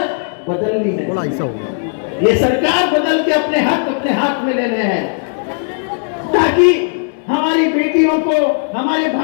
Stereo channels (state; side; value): silent; right; digital silence